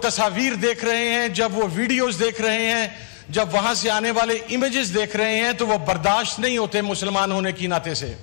देख रहे हैं, जब वो वीडियोस देख रहे हैं, जब वहां से आने वाले इमेजेस देख रहे हैं, तो वो बर्दाश्त नहीं होते मुसलमान होने की नाते से।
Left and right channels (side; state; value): right; silent; digital silence